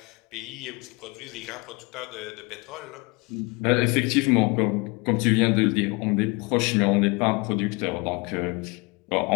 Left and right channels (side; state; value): right; quieter; 27.8 dB